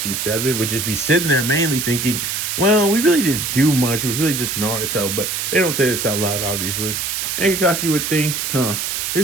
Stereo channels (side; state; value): right; noise; hiss, 2 dB below the sound